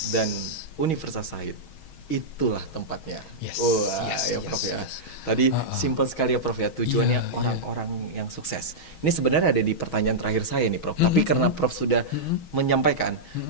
Dan Universitas Said itulah tempatnya. Yes, Wah, yes, ya yes, Prof ya. yes. Tadi Uh-uh. simple sekali ya Prof ya. Tujuannya Iya, orang-orang yang sukses. Ini sebenarnya ada di pertanyaan terakhir saya nih Prof. Tapi karena Prof sudah menyampaikan,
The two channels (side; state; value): right; late; 6.3 ms